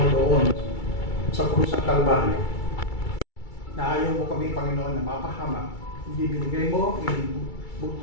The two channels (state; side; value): late; right; 2.3 ms